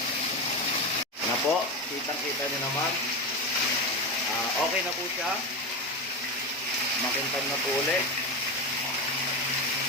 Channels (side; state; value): both; normal; correlation 0.18